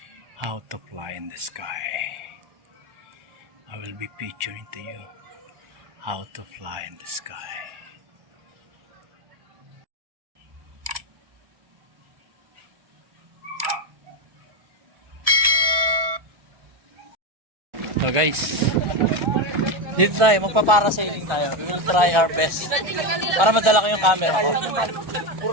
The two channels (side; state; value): left; late; 1.4 ms